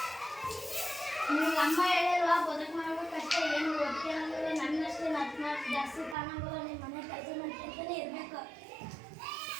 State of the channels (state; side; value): drops out; left; at 6.2 s